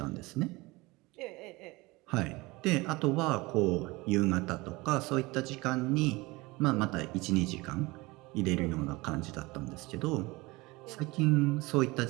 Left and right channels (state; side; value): quieter; left; 22.6 dB